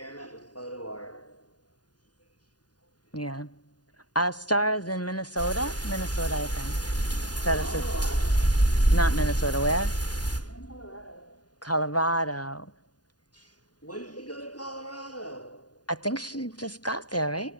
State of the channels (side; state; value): right; late; 0.69 ms